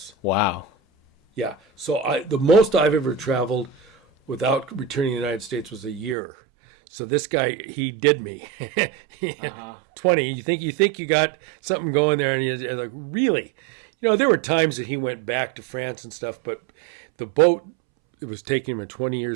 Wow. Yeah. So the most I've ever traveled without returning to the United States was a year. So this guy, he did me. 20. You think you got something going there, and you're like, really? There were times that he went back to France and stuff, but the boat, it was taking him 20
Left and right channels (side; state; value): left; drops out; at 6.2 s